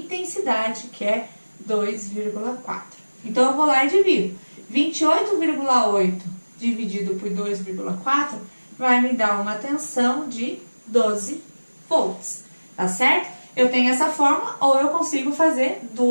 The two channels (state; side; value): inverted; both; correlation -1.00